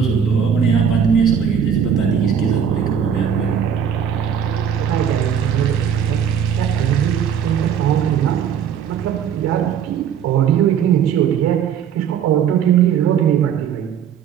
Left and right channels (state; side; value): quieter; left; 8.2 dB